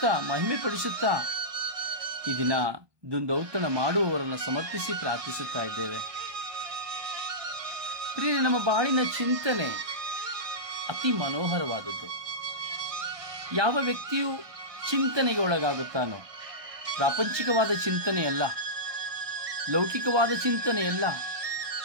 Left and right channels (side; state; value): left; late; 1.2 ms